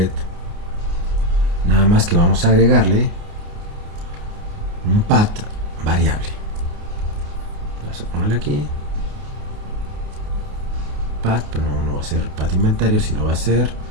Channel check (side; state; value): left; late; 29 ms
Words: Nada más que vamos a agregarle un path variable. Vamos a ponerle aquí path, pero no va a ser path inventario, sino va a ser